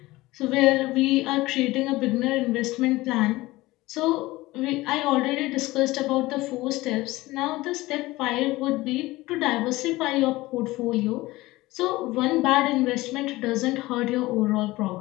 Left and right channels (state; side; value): quieter; right; 19.2 dB